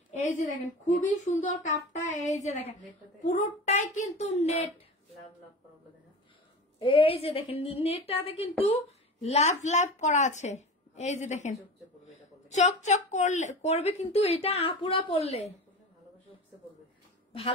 এই যে দেখেন খুবই সুন্দর কাপটা। এই যে দেখেন পুরোটাই কিন্তু নেট। এই যে দেখেন নেটটাতে কিন্তু লাভ লাভ করা আছে। এই যে দেখেন চকচক করবে কিন্তু এটা আপুরা পড়লে,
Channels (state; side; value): normal; both; correlation 0.32